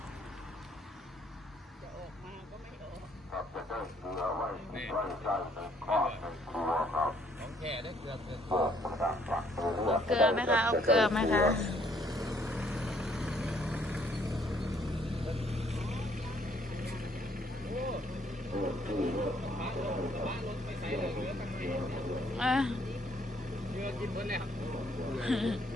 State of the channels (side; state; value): both; normal; correlation 0.66